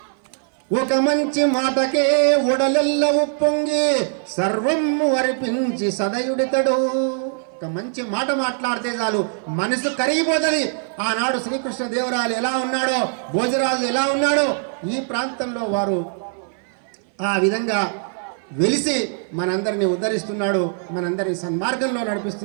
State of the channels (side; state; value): left; silent; 57 dB below the other